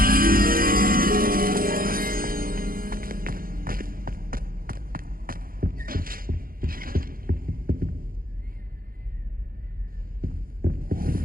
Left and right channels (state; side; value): late; left; 0.42 ms